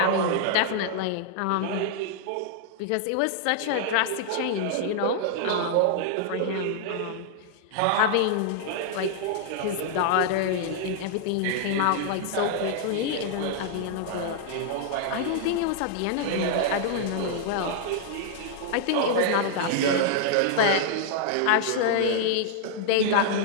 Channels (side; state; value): both; different; correlation -0.01